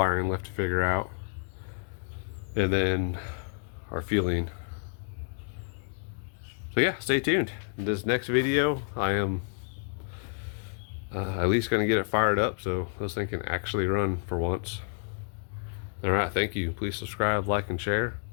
left to figure out. And then our fueling. So yeah, stay tuned. In this next video, I am at least going to get it fired up so this thing can actually run for once. Alright, thank you. Please subscribe, like, and share.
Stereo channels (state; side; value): silent; right; 58 dB below the other